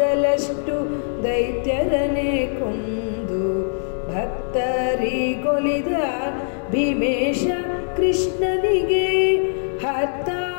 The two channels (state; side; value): silent; right; 59 dB below the other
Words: ದೈತ್ಯರನೆ ಕೊಂದು ಭಕ್ತರಿಗೊಲಿದ ಭೀಮೇಶ ಕೃಷ್ಣನಿಗೆ